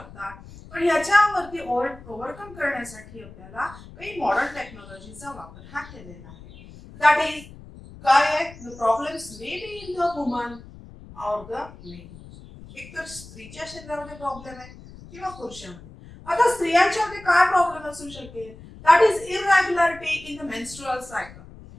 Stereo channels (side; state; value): left; noise; rumble, 18 dB below the sound